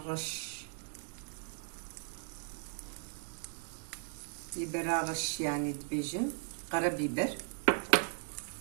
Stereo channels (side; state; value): left; silent; digital silence